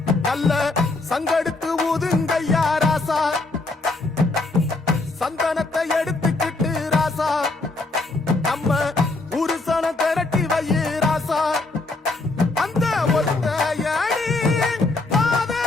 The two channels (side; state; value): right; quieter; 3.3 dB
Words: நல்ல சங்கெடுத்து ஊதுங்கய்யா ராசா சந்தனத்தை எடு